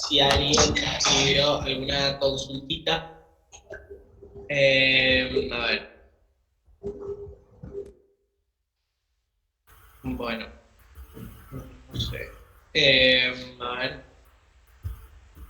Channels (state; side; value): identical; both; correlation 1.00